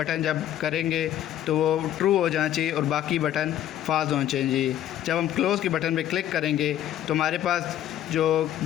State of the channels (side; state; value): right; quieter; 11.8 dB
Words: जब करेंगे तो वो ट्रू हो जाना चाहिए और बाकी बटन फाल्स होना चाहिए। जब हम क्लोज़ के बटन पे क्लिक करेंगे तो हमारे पास जो